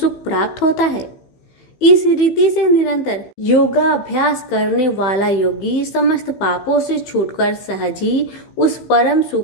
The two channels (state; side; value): late; right; 15 ms